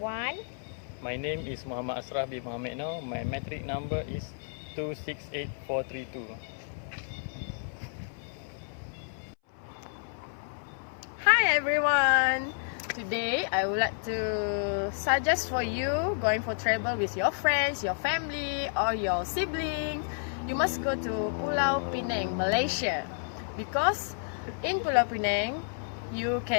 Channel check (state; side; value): silent; right; 57 dB below the other